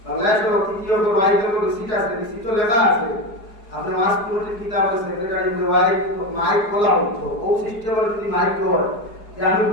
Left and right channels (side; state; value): right; late; 4.8 ms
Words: বাংলাদেশের তৃতীয় করে বাইরে করে সিট আছে সিটো লেখা আছে আপনি মাস পুরোটি কিতাবের সেক্রেটারি মাইক খোলা হতো ও সিস্টেমের যদি মাইক হয় যে আমি